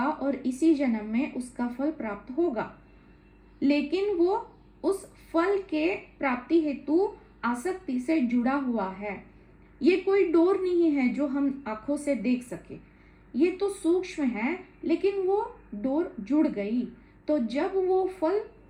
और इसी जन्म में उसका फल प्राप्त होगा, लेकिन वो उस फल के प्राप्ति हेतु आसक्ति से जुड़ा हुआ है। ये कोई डोर नहीं है जो हम आंखों से देख सके, ये तो सूक्ष्म है, लेकिन वो डोर जुड़ गई। तो जब वो फल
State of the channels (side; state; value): both; identical; correlation 1.00